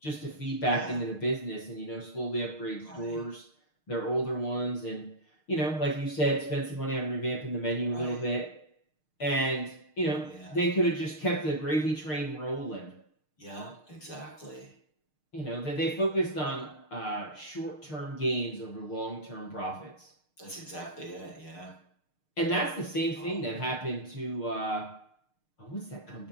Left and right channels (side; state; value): right; late; 6.5 ms